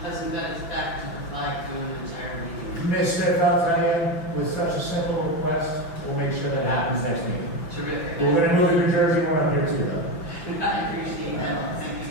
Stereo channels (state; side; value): late; right; 5.9 ms